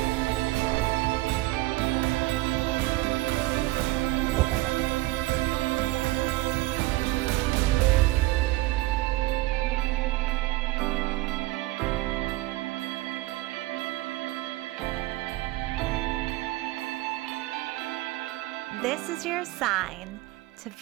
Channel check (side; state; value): left; quieter; 19.2 dB